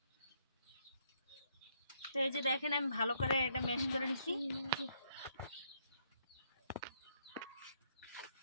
তো এই যে দেখেন আমি ভালো করে এটা ম্যাশ করে নিছি।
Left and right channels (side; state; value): both; inverted; correlation -0.72